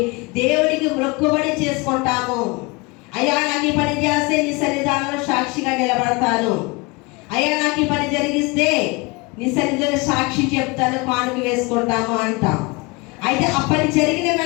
దేవుడికి మొక్కుబడి చేసుకుంటాము. అయ్యా నాకు ఈ పని చేస్తే నీ సన్నిధానంలో సాక్షిగా నిలబడతాను, అయ్యా నాకు ఈ పని జరిగిస్తే నీ సన్నిధిలో సాక్షి చెప్తాను, కానుక వేసుకుంటాము అంటాం. అయితే ఆ పని జరిగిన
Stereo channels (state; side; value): quieter; right; 26.4 dB